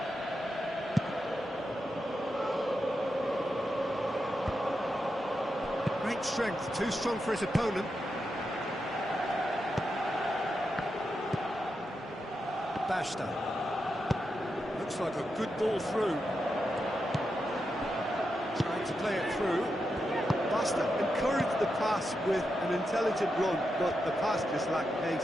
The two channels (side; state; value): both; normal; correlation 0.87